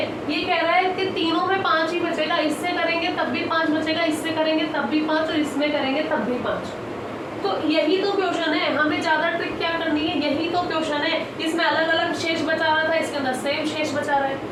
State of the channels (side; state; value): both; identical; correlation 1.00